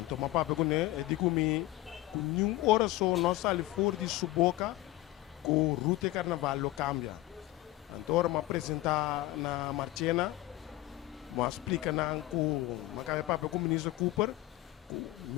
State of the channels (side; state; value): right; quieter; 17.3 dB